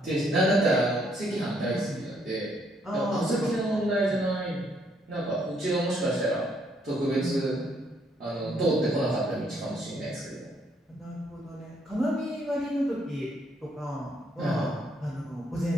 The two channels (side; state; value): both; normal; correlation 0.70